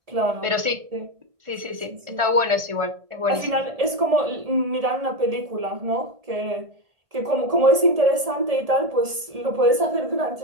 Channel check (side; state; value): left; late; 1.7 ms